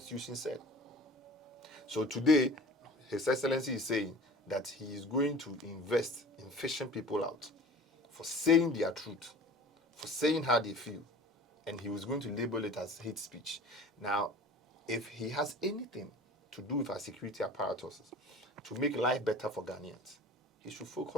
said. So today, His Excellency is saying that he is going to invest in fishing people out for saying their truth, for saying how they feel, and he was going to label it as hate speech. Now, if he has anything to do with our security apparatuses to make life better for Ghanaians, he should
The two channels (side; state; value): both; normal; correlation 0.42